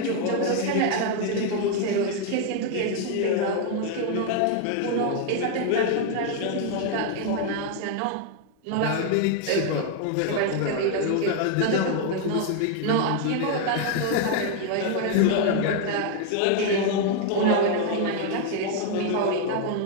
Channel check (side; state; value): both; different; correlation 0.00